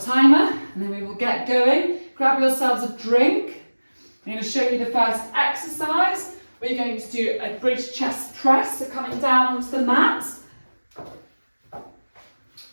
timer and then we will get going. Grab yourselves a drink. I'm going to show you the first exercise. We're going to do a bridge chest press, so coming down onto the mat.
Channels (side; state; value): both; inverted; correlation -1.00